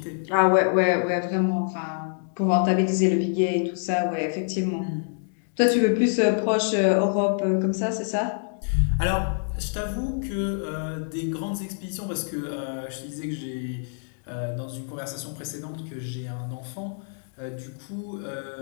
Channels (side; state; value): right; silent; digital silence